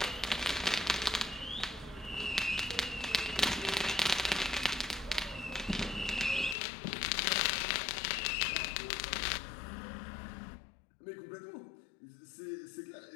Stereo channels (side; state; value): right; drops out; at 6.6 s